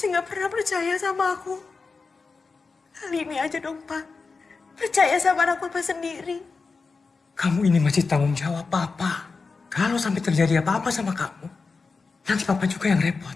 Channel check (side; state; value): right; quieter; 4.4 dB